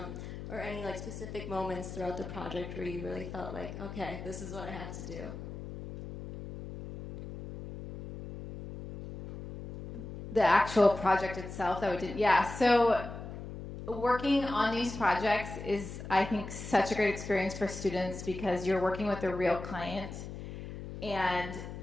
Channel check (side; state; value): left; noise; hum, 10 dB below the sound